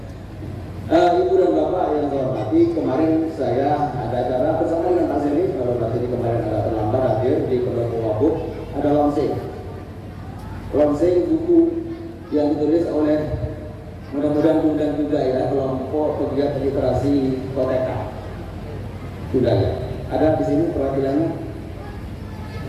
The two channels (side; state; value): both; identical; correlation 1.00